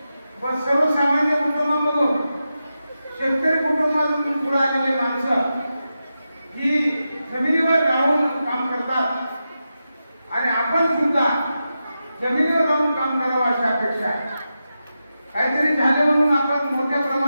पण सर्वसामान्य कुटुंबामधून शेतकरी कुटुंबातून पुढे आलेली माणसं ही जमिनीवर राहून काम करतात आणि आपण सुद्धा जमिनीवर राहून काम करावं अशी अपेक्षा आहे. काहीतरी झालं म्हणून आपण मोठ्या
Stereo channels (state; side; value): inverted; both; correlation -0.90